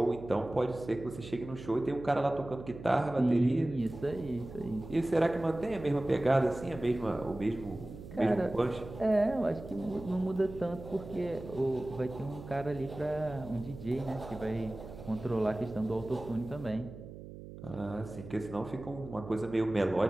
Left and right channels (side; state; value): right; noise; hum, 13 dB below the sound